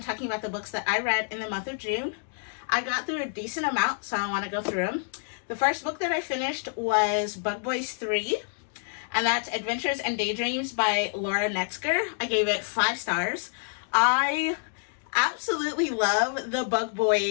talking about the books that I read in the month of June. I got through a decent amount, so I want to go through them. The first book that I finished was Bug Boys 3, and that's Adventures and Daydreams by Laura Netzger. I gave it 5 stars. I absolutely love the Bug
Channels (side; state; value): right; silent; digital silence